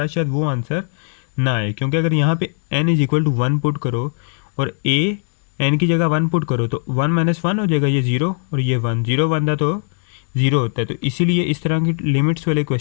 शायद वो आंसर ना आए, क्योंकि अगर यहाँ पे n = 1 पुट करो और a n की जगह 1 पुट करो तो 1 - 1 हो जाएगा, ये 0 और ये 1, 0 बनता तो 0 होता है। तो इसीलिए इस तरह की लिमिट्स वाले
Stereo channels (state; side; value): silent; right; digital silence